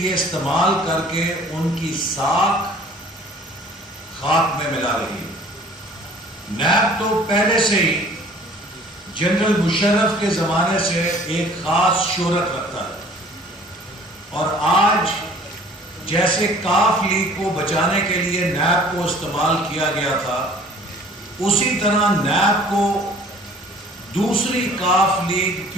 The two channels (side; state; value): both; normal; correlation 0.51